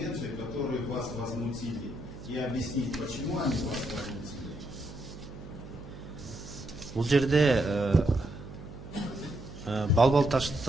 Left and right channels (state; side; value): noise; right; hum, 14 dB below the sound